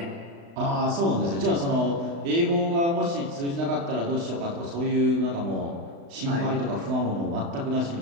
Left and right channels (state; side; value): late; left; 35 ms